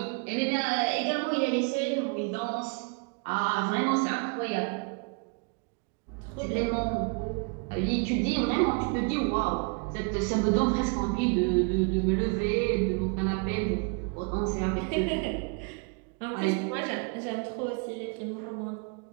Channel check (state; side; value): quieter; left; 34.3 dB